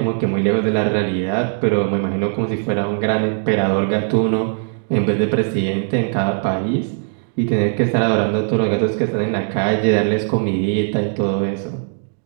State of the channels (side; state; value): left; silent; 55 dB below the other